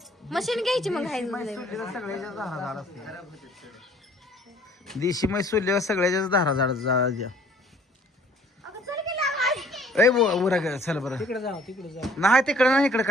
मशीन घ्यायची मग आहे सगळ्याच्या धारा झाड असते. देशी म्हैस सोडल्यावर सगळ्याच्याच धारा झाड द्या. ए उरा ग चल बरं. तिकडे जाऊ नाही तिकडे नाही इकडे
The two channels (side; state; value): both; normal; correlation 0.57